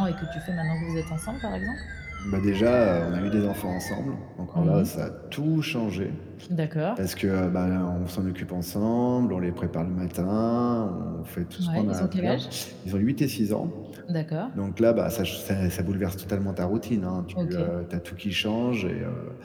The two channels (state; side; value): identical; both; correlation 1.00